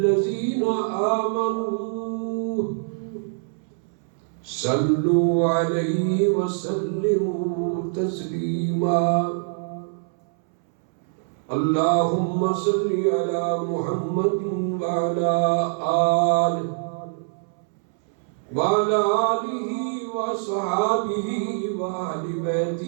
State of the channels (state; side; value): silent; left; 62 dB below the other